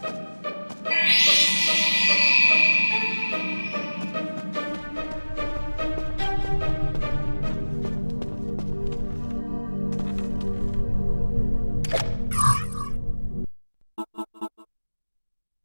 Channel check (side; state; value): both; inverted; correlation -1.00